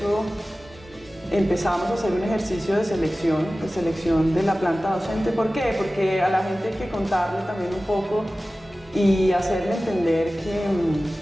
empezamos a hacer un ejercicio de selección de la planta docente. ¿Por qué? Porque a la gente hay que contarle también un poco y hacerle entender que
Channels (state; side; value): normal; both; correlation 0.96